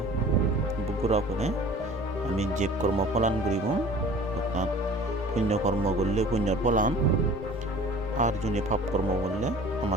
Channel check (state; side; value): normal; both; correlation 0.45